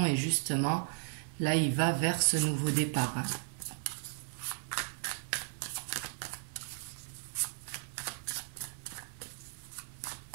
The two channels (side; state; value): left; silent; 54 dB below the other